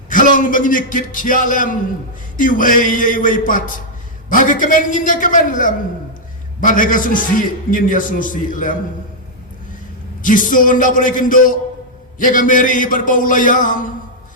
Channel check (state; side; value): normal; both; correlation -0.05